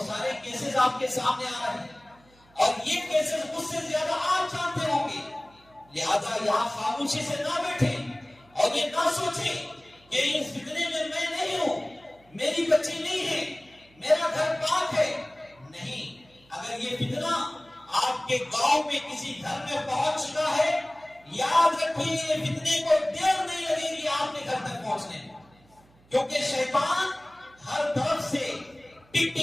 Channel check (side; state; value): right; noise; hum, 29 dB below the sound